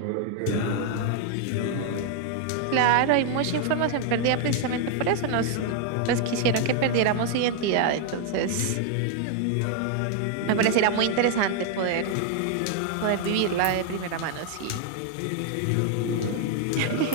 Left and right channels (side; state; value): both; different; correlation 0.00